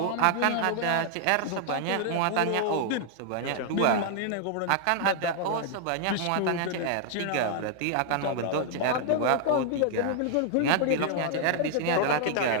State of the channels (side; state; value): both; different; correlation 0.00